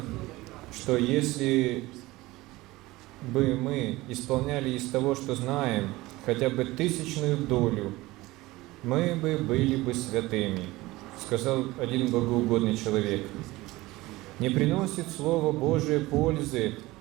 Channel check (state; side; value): quieter; left; 19.5 dB